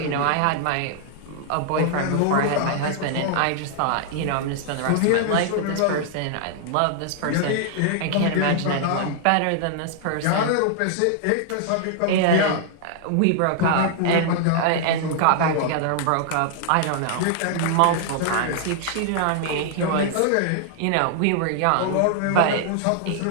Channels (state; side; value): different; both; correlation 0.00